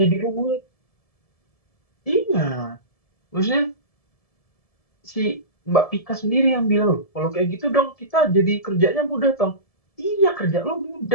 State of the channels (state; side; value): late; right; 1.7 ms